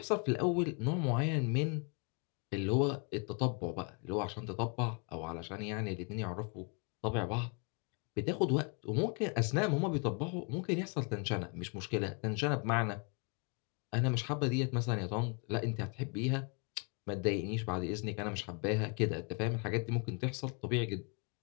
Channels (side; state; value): right; quieter; 35.9 dB